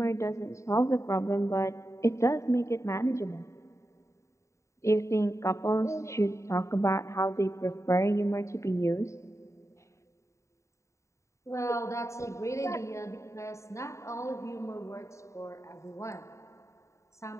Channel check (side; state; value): right; late; 0.14 ms